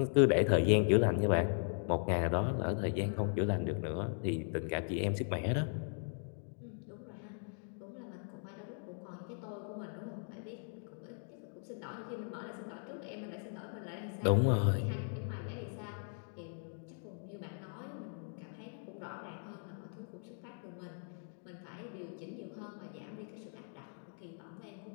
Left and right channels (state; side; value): silent; right; 52 dB below the other